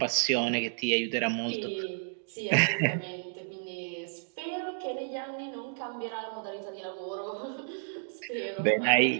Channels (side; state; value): left; silent; digital silence